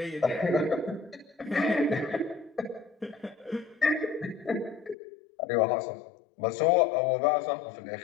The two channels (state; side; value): drops out; right; at 5.0 s